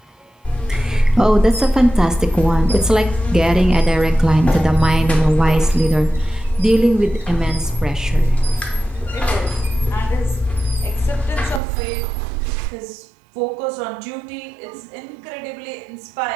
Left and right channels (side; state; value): left; drops out; at 11.6 s